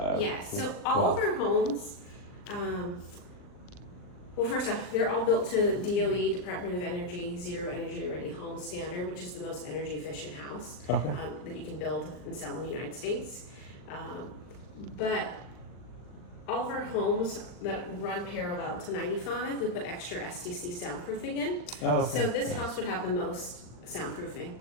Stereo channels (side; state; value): right; late; 39 ms